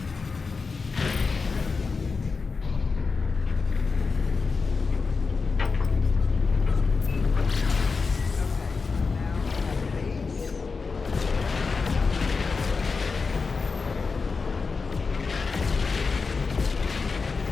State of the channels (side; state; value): right; quieter; 4.6 dB